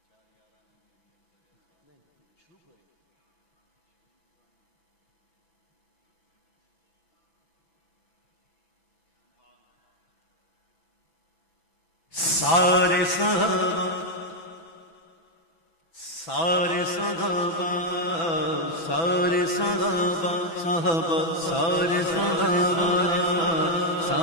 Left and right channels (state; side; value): late; right; 6.0 ms